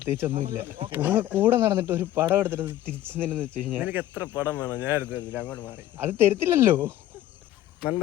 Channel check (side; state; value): right; quieter; 13.6 dB